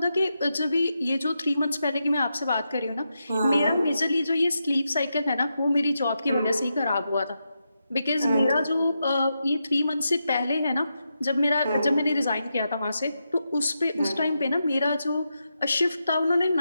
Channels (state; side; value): inverted; both; correlation -0.86